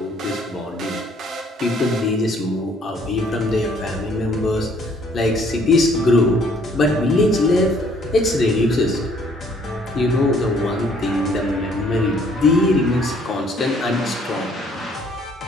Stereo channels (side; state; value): both; normal; correlation 0.62